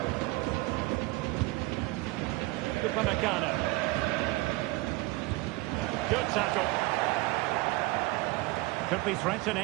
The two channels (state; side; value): quieter; left; 21.2 dB